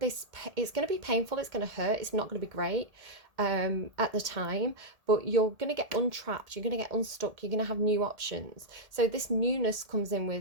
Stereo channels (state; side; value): late; left; 1.8 ms